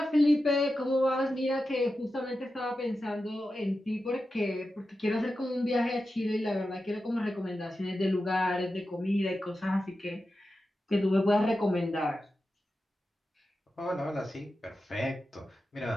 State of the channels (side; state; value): both; normal; correlation 0.91